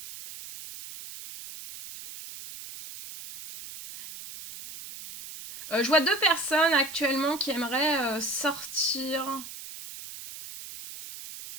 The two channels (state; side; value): noise; right; hiss, 13 dB below the sound